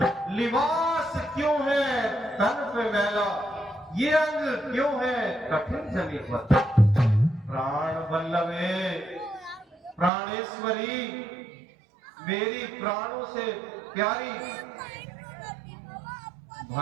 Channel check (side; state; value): left; drops out; at 10.1 s